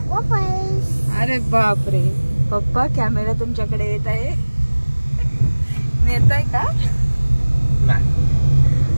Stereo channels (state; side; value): inverted; both; correlation -1.00